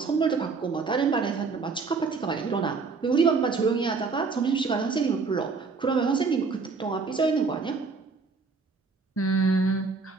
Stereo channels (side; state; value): left; quieter; 4.6 dB